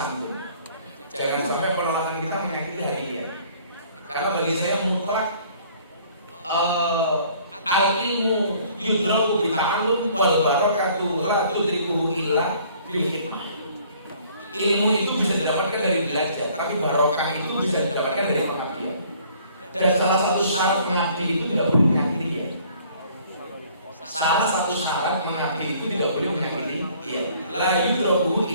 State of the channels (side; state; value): both; inverted; correlation -0.57